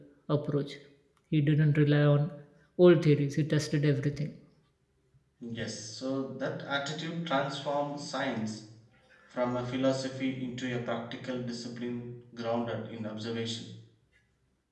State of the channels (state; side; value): identical; both; correlation 1.00